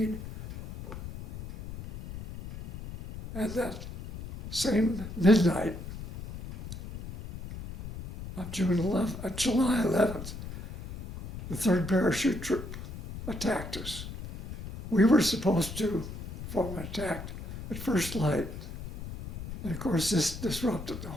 And that same midnight of July 11th, the 3rd Parachute Troop attacked us. We were supposed to form an attack at first light, and of course this disrupted the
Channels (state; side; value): noise; left; rumble, 10 dB below the sound